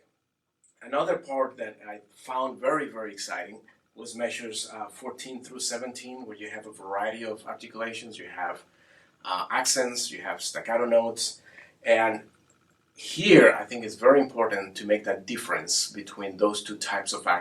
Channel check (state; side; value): identical; both; correlation 1.00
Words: Another part that I found very, very exciting was measures 14 through 17, where you have a variety of articulations. You have accents, you have staccato notes, and here I think it's very important to make that difference between those two types of